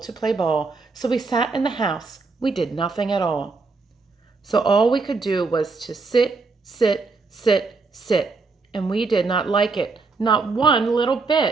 to play ball, so we sat in the house, we did nothing at all. So all we could do was to sit, sit, sit, sit, and we did not like it, not one little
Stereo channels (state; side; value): quieter; left; 4.1 dB